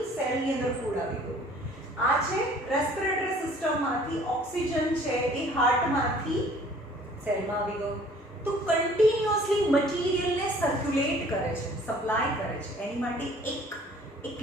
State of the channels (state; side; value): normal; both; correlation 0.54